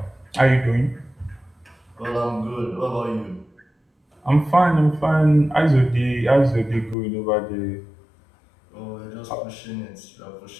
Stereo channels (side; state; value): right; drops out; at 7.0 s